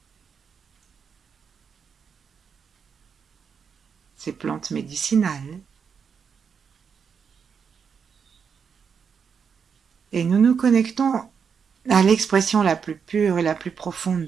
ses plantes médicinales. Et nous nous connectons à l'expression la plus pure et la plus profonde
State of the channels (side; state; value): left; quieter; 6.5 dB